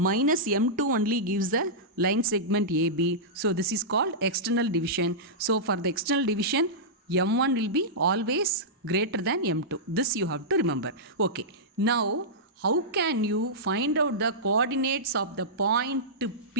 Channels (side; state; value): both; normal; correlation -0.13